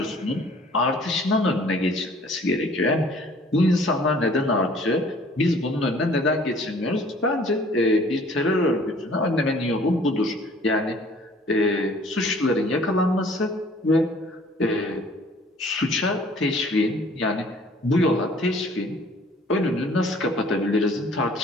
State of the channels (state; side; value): normal; both; correlation 0.54